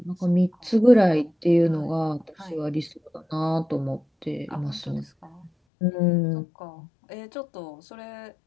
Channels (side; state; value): right; drops out; at 5.5 s